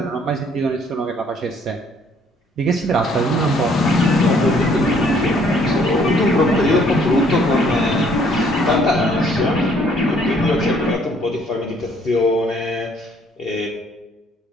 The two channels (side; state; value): both; normal; correlation 0.62